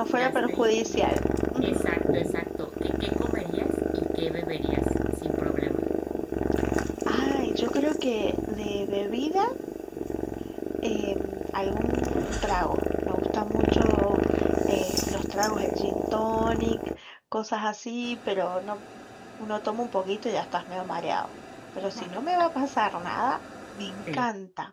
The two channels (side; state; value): both; identical; correlation 1.00